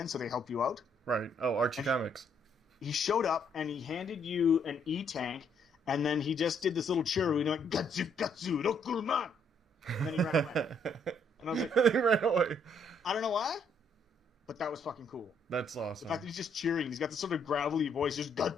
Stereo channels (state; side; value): normal; both; correlation 0.69